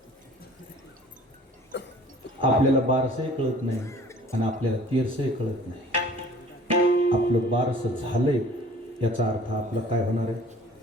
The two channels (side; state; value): both; normal; correlation 0.50